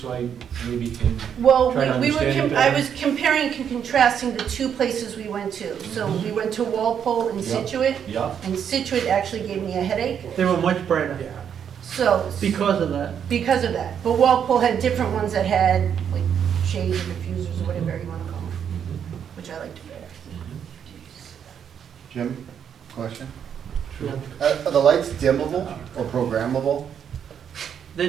so I maybe can, Well, Try to we were, understand it I better. was comparing and contrasting the two places we went to. So we went to Walpole and Yeah. Situate, yeah? and Situate actually gave me a headache. They were much brighter So, because of that. because of that. But Walpole had different ones that had, like, shades or diffusers or whatever you want to call them, which I liked better. Jim, question? Yeah. Are the lights dimmable or programmable?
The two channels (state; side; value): quieter; left; 8.2 dB